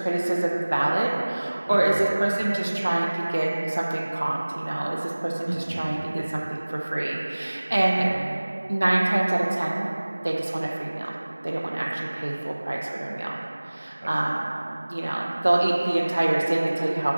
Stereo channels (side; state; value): both; inverted; correlation -1.00